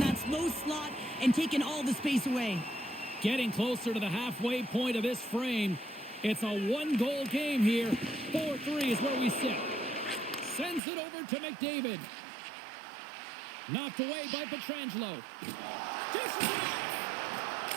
slow slot and taking all the space away. Getting closer to the halfway point of this frame. It's a one-goal game here. 4-3 is where we sit. Sends it over to McDavid. Knocked away by Pietrangelo. Dishes it off.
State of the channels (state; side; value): drops out; left; at 10.8 s